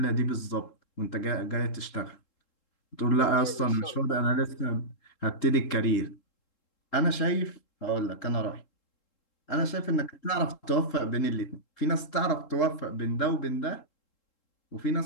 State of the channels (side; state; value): right; late; 3.7 ms